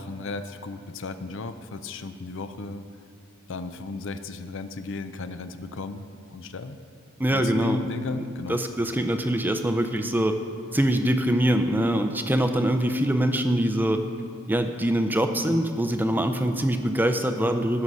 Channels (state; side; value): normal; both; correlation 0.81